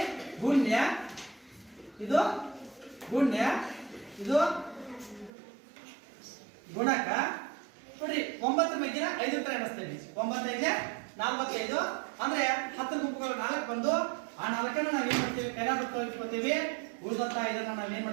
ಗುಣ್ಯ, ಇದು ಗುಣ್ಯ, ಇದು ಗುಣಕ. ನೋಡಿ, 9 ಮಗ್ಗಿನ 5 ತರ ಎಣಿಸ್ತೇವೆ. 9 5 45 ಅಂದ್ರೆ 10 ಗುಂಪುಗಳು 4 ಬಂದು ಆ 4ಅನ್ನು ನಾವ್ ಏನ್ ಮಾಡ್ತೀವಿ, ಕೈಲಾಗುತ್ತೋ ಇಟ್ಕೋತೀವಿ. ಉಳಿದಂತ ಇದನ್ನ ನಾವ್ ಏನ್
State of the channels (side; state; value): left; drops out; at 5.3 s